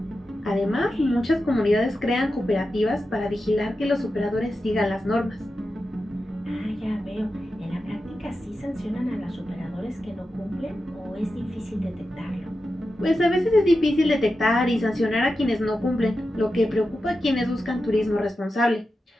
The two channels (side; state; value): both; normal; correlation 0.91